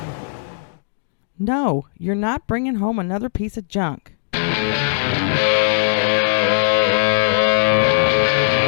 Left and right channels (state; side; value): silent; right; digital silence